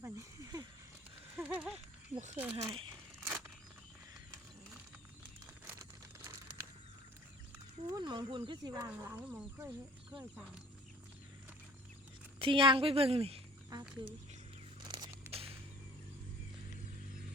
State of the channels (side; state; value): both; normal; correlation 0.50